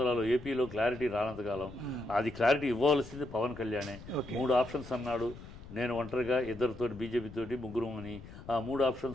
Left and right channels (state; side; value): noise; left; rumble, 15 dB below the sound